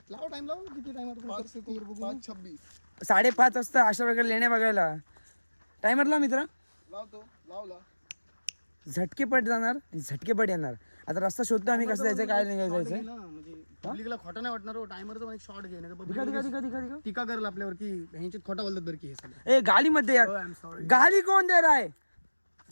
लाव टाइम लाव. किती टाइम 5:26 5:30 वाजता अशा वगैरे लेण्या बघायला. टायमरला मित्र लावला. झटकेपट जाणार झटकेपट येणार. आता रस्ता शोधतो आम्ही कसं जायचं काय नाही जायचं. म्हणजे पब्लिकला खोटा नाही वाटणार. टायमरचा पण एक शॉट घे नाही दिखा टीका करेल आपल्यावर की ह्यांच्यात खोटा बोलतात बरं की हे सगळं. ए गाली मध्ये यार आय एम सॉरी. गाली कोण दे रहा है.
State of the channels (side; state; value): both; inverted; correlation -1.00